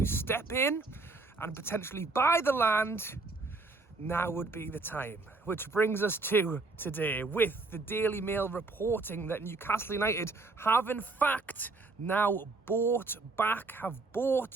step in and potentially buy the land, now would be the time. Which brings us to today, with the Daily Mail reporting that Newcastle United have in fact now bought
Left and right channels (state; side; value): quieter; left; 3.6 dB